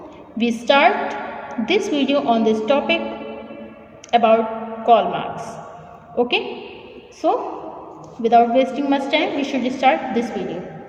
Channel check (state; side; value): identical; both; correlation 1.00